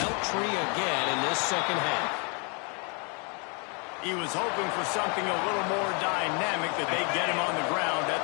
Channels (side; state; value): right; quieter; 35.0 dB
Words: tree again in this second half. He was hoping for something a little more dynamic, that they get him on the ground at